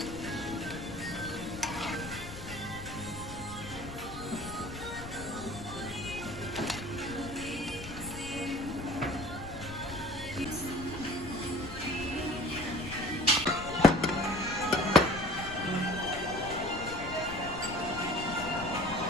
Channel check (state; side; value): noise; left; rumble, 11 dB below the sound